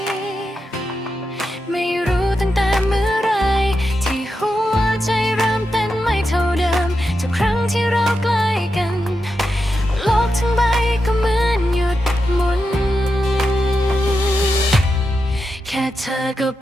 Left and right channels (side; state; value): both; normal; correlation 0.87